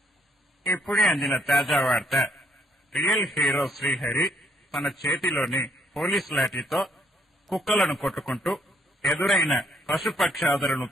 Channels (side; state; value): both; normal; correlation 0.68